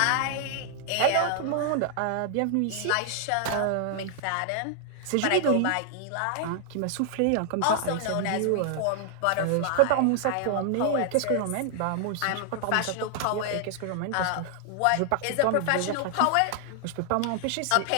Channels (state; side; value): different; both; correlation 0.00